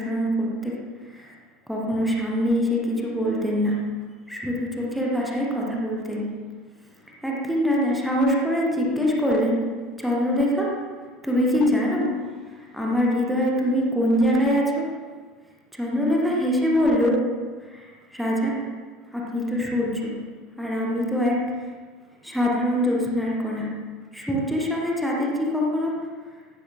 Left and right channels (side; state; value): both; normal; correlation 0.51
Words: করতেন। কখনো সামনে এসে কিছু বলতেন না, শুধু চোখের ভাষায় কথা বলতেন। একদিন রাজা সাহস করে জিজ্ঞেস করলেন, চন্দ্রলেখা, তুমি কি জানো আমার হৃদয়ে তুমি কোন জায়গায় আছো? চন্দ্রলেখা হেসে বলল, রাজা, আপনি তো সূর্য, আর আমি তো এক সাধারণ জ্যোৎস্নার কণা। সূর্যের সঙ্গে চাঁদের কি কখনো